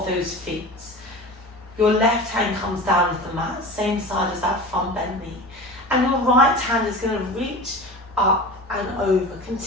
those feet. Your left hand comes down to the mat, same side as that front bent knee. And your right hand is going to reach up and over,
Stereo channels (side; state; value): both; normal; correlation 0.34